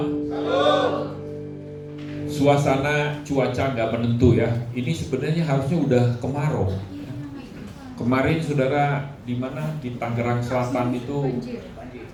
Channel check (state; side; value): identical; both; correlation 1.00